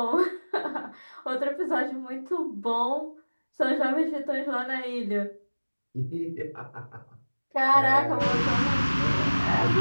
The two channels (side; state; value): both; inverted; correlation -1.00